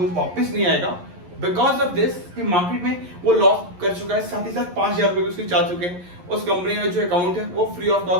वापस नहीं आएगा बिकॉज ऑफ दिस कि मार्केट में वो लॉस कर चुका है। साथ ही साथ 5,000 रुपए भी उसके जा चुके हैं। उस कंपनी का जो अकाउंट है वो फ्री ऑफ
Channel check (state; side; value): late; left; 11 ms